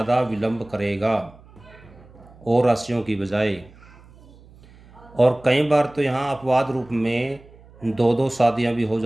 विलंब करेगा और राशियों की बजाय। और कई बार तो यहाँ अपवाद रूप में 2-2 शादियाँ भी हो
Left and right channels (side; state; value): right; noise; hum, 24 dB below the sound